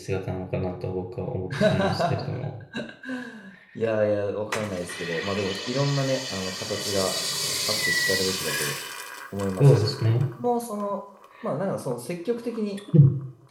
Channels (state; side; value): identical; both; correlation 1.00